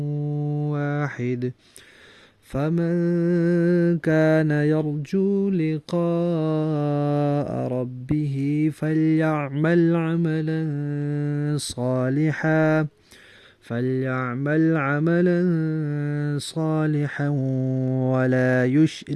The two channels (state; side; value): identical; both; correlation 1.00